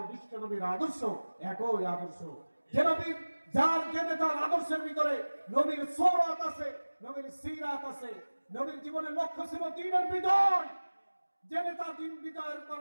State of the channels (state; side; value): inverted; both; correlation -1.00